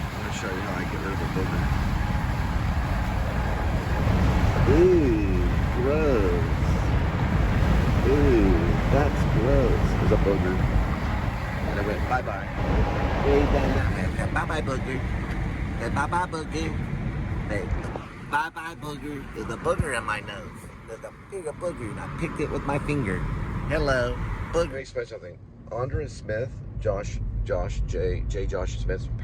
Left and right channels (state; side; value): identical; both; correlation 1.00